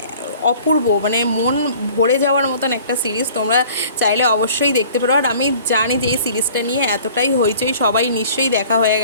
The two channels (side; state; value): both; inverted; correlation -0.50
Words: অপূর্ব, মানে মন ভরে যাওয়ার মতন একটা সিরিজ। তোমরা চাইলে অবশ্যই দেখতে পারো। আর আমি জানি যে এই সিরিজটা নিয়ে এতটাই হইচই, সবাই নিশ্চয়ই দেখা হয়ে